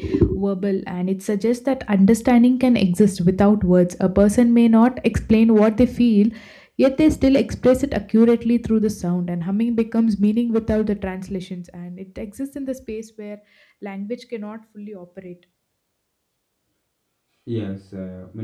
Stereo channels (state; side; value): identical; both; correlation 1.00